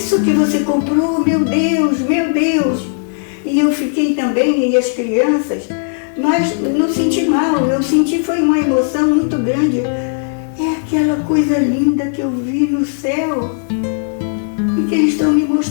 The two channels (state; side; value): silent; right; digital silence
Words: que você comprou? Meu Deus, meu Deus. E eu fiquei também, e as crianças, mas não senti mal, eu senti foi uma emoção muito grande. É aquela coisa linda que eu vi no céu e que eles estão me